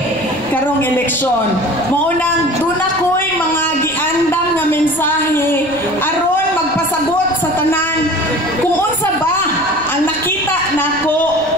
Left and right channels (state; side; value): noise; right; rumble, 20 dB below the sound